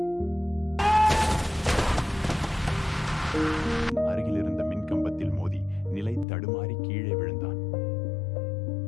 அருகில் இருந்த மின்கம்பத்தில் மோதி நிலை தடுமாறி கீழே விழுந்தான்.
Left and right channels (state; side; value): drops out; right; at 6.2 s